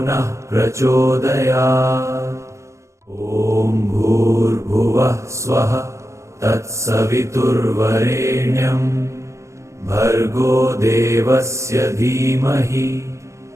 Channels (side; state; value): left; late; 0.14 ms